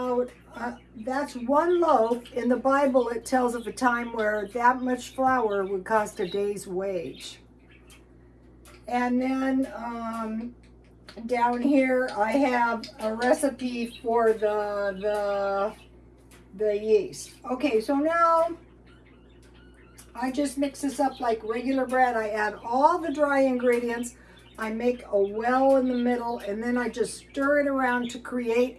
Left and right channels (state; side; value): identical; both; correlation 1.00